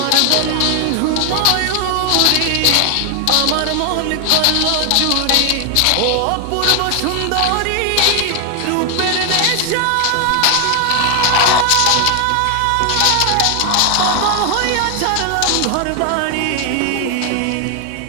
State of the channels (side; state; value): both; different; correlation 0.00